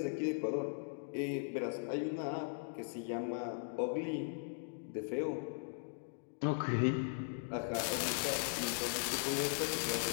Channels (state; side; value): silent; right; digital silence